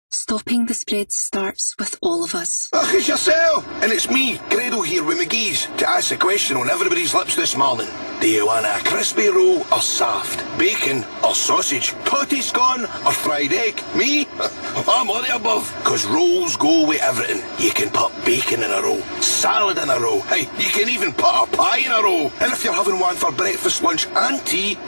Stopping the spread starts with all of us. Ach, it's yourself! And it's me, Grado here with McGee's, to ask a question on everybody's lips this morning. Do you want a crispy roll or soft? Bacon or sausage? Potty scone or fried egg? Me? I'm all the above. Because rolls go with everything. You can put bacon in a roll, salad in a roll. Hey, you can even put a pie in a roll. And if you're having one for breakfast, lunch and tea,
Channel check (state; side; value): inverted; both; correlation -1.00